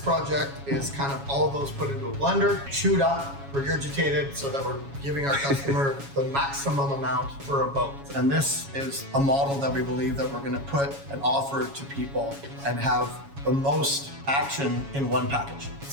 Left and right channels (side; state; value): left; late; 7.2 ms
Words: is kind of all of those put into a blender, chewed up, regurgitated, so that we're giving our customer the maximum amount for a boat. And this is a model that we believe that we're going to put and offer to people and have the most action in one package.